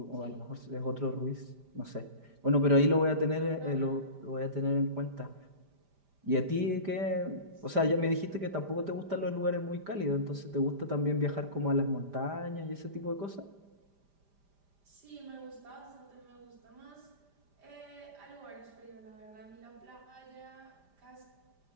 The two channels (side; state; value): left; late; 5.0 ms